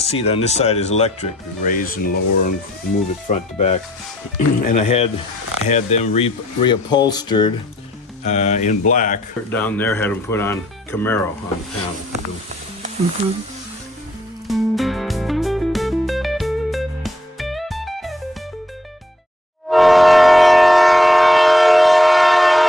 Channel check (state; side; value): normal; both; correlation 0.67